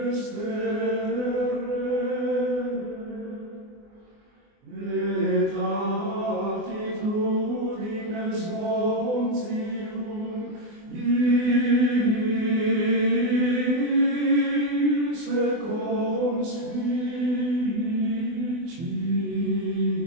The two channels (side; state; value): left; late; 24 ms